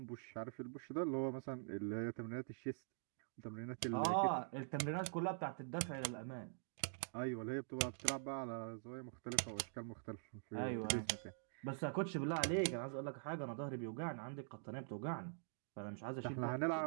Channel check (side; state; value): left; silent; digital silence